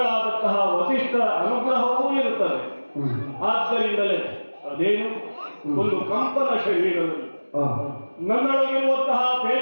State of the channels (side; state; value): both; inverted; correlation -1.00